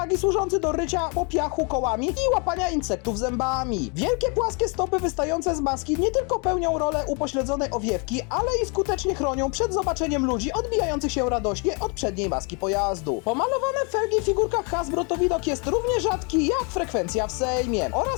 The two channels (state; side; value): quieter; right; 34.2 dB